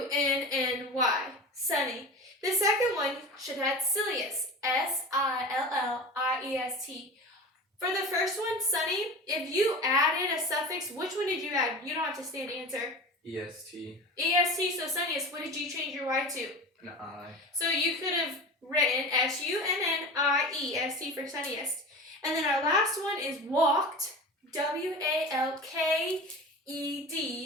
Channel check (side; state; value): both; normal; correlation 0.32